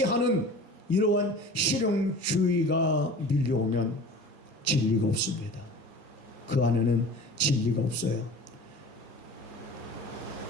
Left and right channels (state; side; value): normal; both; correlation 0.40